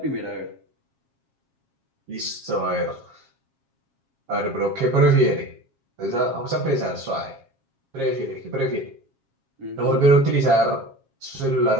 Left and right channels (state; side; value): late; left; 7.4 ms